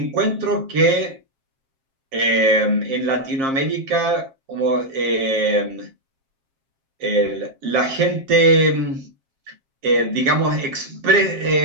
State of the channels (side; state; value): left; late; 7.4 ms